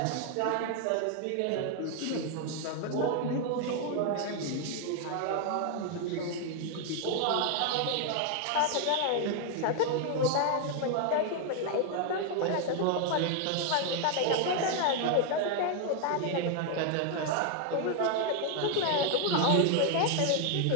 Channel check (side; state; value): both; different; correlation 0.00